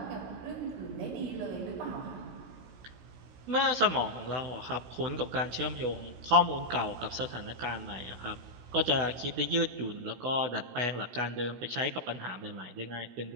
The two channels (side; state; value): left; late; 16 ms